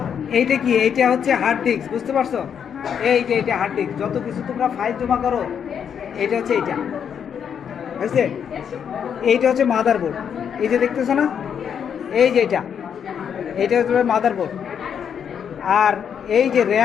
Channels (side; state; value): right; quieter; 7.9 dB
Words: এইটা কি? এইটা হচ্ছে হার্ড ডিস্ক, বুঝতে পারছো? এই যে এটা হার্ড ডিস্ক, যত কিছু তোমরা ফাইল জমা করো এটা হচ্ছে এইটা, বুঝছে? এইটা হচ্ছে মাদারবোর্ড, এই যে দেখতেছো না, এই যে এইটা হচ্ছে মাদারবোর্ড। আর এই যে